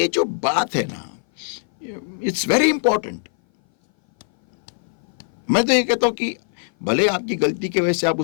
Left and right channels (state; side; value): silent; right; 59 dB below the other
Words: जो बात है ना, इट्स वेरी इंपॉर्टेंट. मैं तो ये कहता हूं कि भले आपकी गलती की वजह से आप